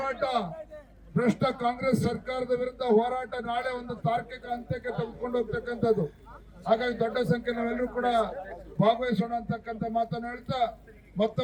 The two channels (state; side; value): identical; both; correlation 1.00